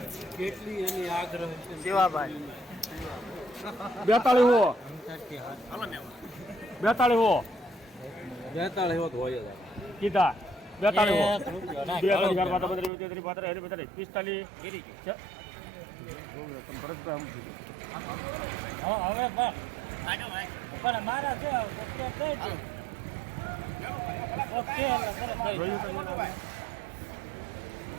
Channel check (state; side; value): drops out; left; at 12.9 s